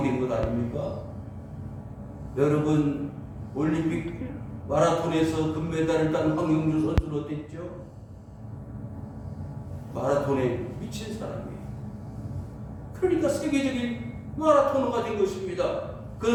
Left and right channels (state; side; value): identical; both; correlation 1.00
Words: 된 것 아닙니까? 여러분, 올림픽 마라톤에서 금메달을 딴 황영주 선수는 어땠죠? 마라톤에 미친 사람이에요. 그러니까 세계적인 마라토너가 된 것입니다.